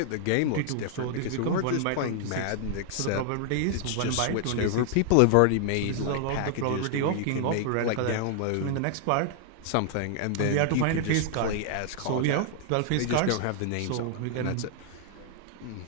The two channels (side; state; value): both; different; correlation 0.00